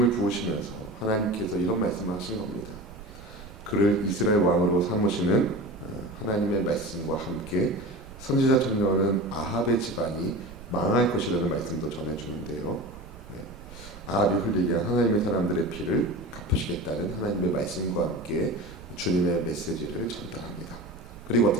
부으시면서 하나님께서 이런 말씀하신 겁니다. 그를 이스라엘 왕으로 삼으시는 하나님의 말씀과 함께 선지자 청년은 아합의 집안이 망할 것이라는 말씀도 전해주는데요. 아합이 흘리게 한 하나님의 사람들의 피를 갚으시겠다는 하나님의 말씀과 함께 주님의 메시지를 전달합니다. 그리고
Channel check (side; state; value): right; noise; rumble, 17 dB below the sound